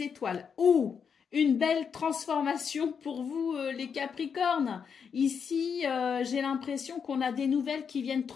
étoiles. Oh! Une belle transformation pour vous, les Capricornes. Ici, j'ai l'impression qu'on a des nouvelles qui viennent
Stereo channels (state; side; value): quieter; right; 6.6 dB